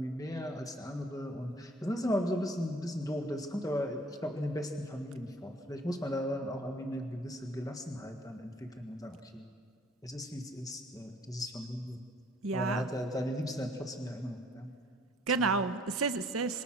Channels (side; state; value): both; normal; correlation 0.57